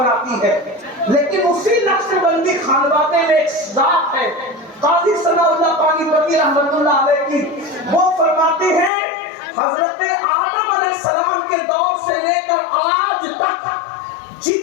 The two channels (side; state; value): right; drops out; at 8.9 s